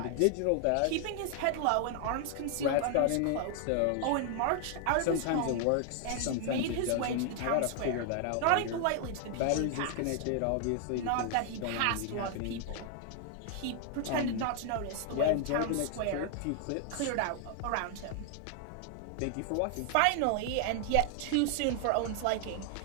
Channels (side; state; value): both; different; correlation 0.00